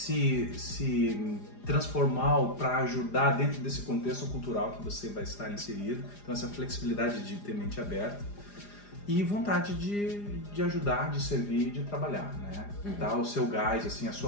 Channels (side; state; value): right; late; 4.9 ms